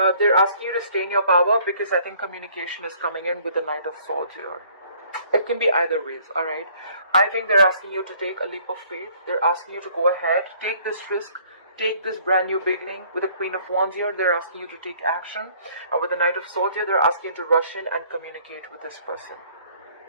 they're asking you to stay in your power because I think communication is coming in with the Knight of Swords here. It can be either ways, alright? I think they're asking you to take a leap of faith. They're asking you to go ahead, take this risk, take this brand new beginning. With the Queen of Wands here, they're asking you to take action. And with the Knight of Swords here, they're asking you to rush in and communicate with this person.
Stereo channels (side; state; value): both; inverted; correlation -0.59